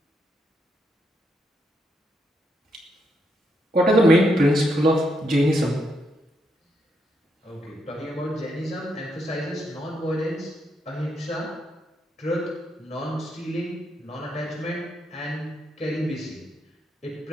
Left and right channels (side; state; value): both; normal; correlation 0.79